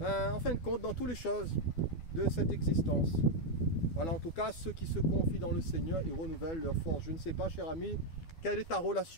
en fin de compte, dans toutes les choses de cette existence. Voilà, en tout cas, ceux qui se confient dans le Seigneur, ils renouvellent leur force. Je ne sais pas, cher ami, quelle est ta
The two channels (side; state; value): right; late; 12 ms